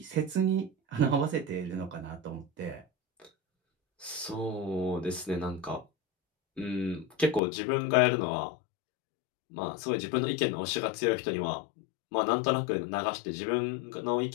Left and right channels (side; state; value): right; drops out; at 7.4 s